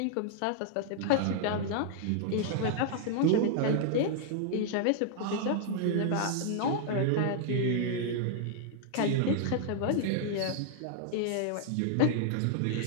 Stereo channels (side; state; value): both; different; correlation 0.00